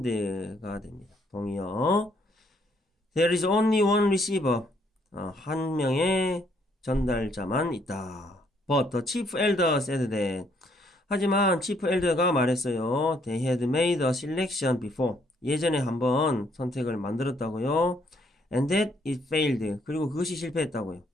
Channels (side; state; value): both; normal; correlation 0.69